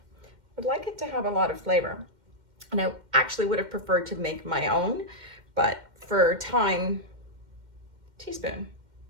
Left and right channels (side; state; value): left; late; 2.1 ms